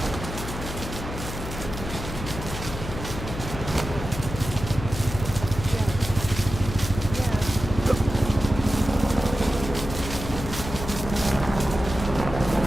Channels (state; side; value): noise; left; hum, 8 dB below the sound